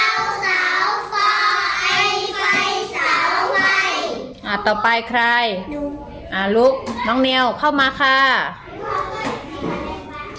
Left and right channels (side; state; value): both; identical; correlation 1.00